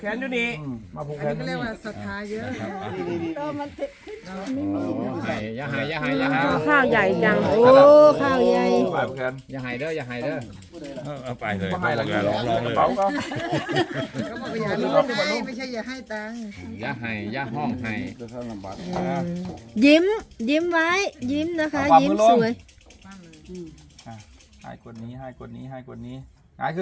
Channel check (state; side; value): identical; both; correlation 1.00